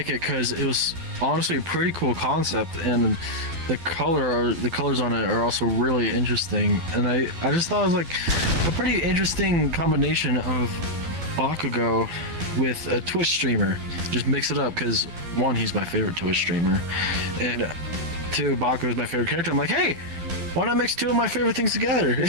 it because it was honestly a pretty cool concept, and the colors on it are also really interesting, and I just thought it was like a pretty interesting combination of Bakugo with a Twitch streamer. Just mix it up because 1, he's my favorite Twitch streamer, and 2, Bakugo is my favorite character. I'm like, hey, why not mix 2 of my favorite things together?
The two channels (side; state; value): left; late; 12 ms